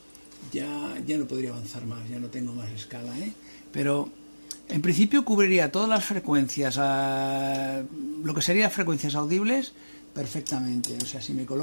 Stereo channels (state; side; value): inverted; both; correlation -1.00